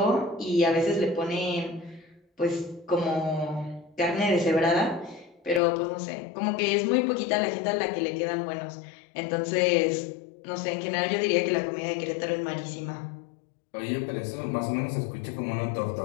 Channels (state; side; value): drops out; right; at 5.6 s